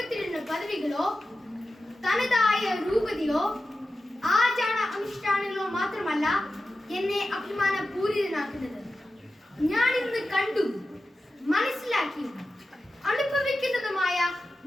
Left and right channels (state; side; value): normal; both; correlation 0.93